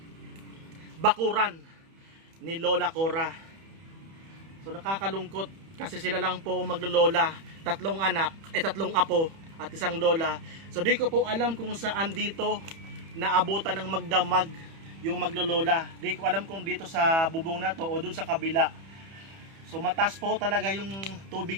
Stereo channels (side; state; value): left; late; 31 ms